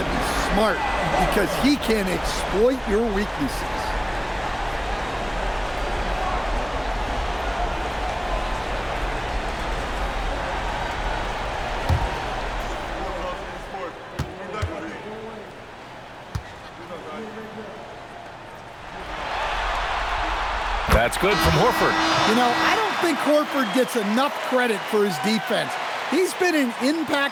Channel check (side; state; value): both; identical; correlation 1.00